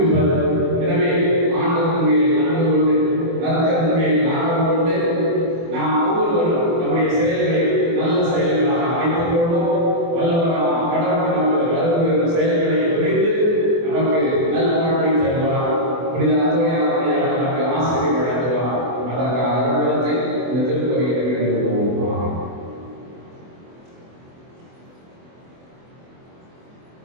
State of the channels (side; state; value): left; late; 24 ms